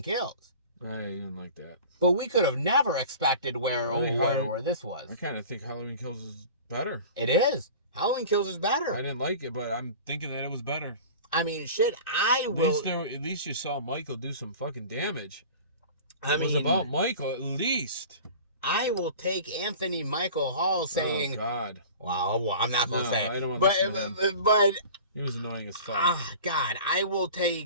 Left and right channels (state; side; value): inverted; both; correlation -0.39